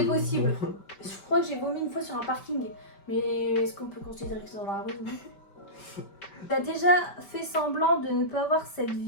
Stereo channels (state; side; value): late; right; 5.2 ms